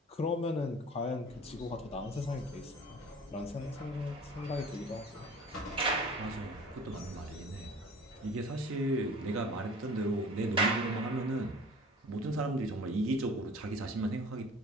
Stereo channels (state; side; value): normal; both; correlation 0.44